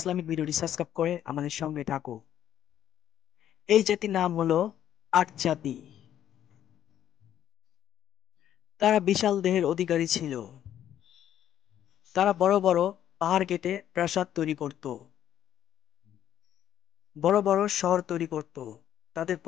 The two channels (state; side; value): quieter; right; 10.9 dB